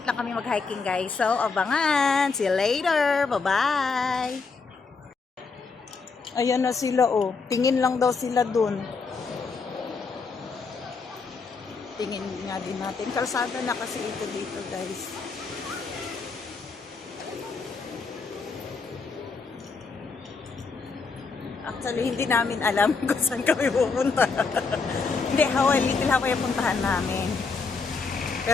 lang kami mag-hiking guys. So, abangan! See you later! Bye-bye! Ayan na sila oh. Tingin lang daw sila dun. Tingin nga din natin. Kalsada na kasi ito dito guys. Actually, hindi namin alam kung saan kami pupunta. Hindi, Little Hawaii ang puntahan namin.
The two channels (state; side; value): quieter; right; 4.6 dB